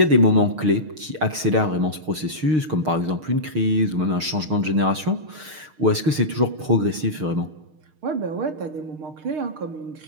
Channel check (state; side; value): late; left; 6.5 ms